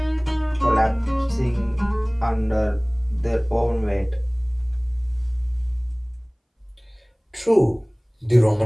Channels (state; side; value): identical; both; correlation 1.00